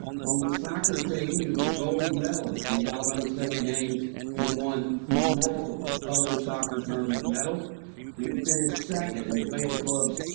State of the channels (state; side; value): silent; left; digital silence